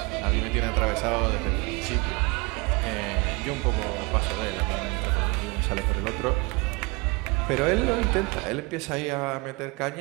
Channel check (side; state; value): left; quieter; 26.7 dB